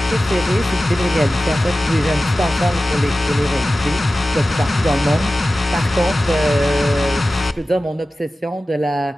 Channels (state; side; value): normal; both; correlation 0.95